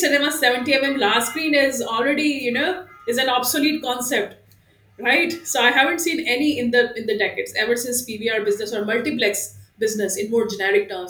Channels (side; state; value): both; identical; correlation 1.00